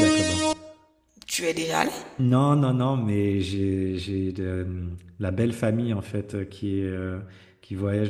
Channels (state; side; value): identical; both; correlation 1.00